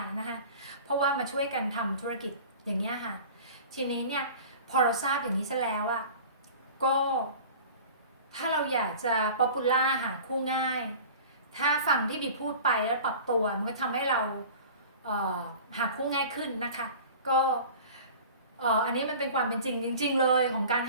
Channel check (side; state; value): both; inverted; correlation -0.40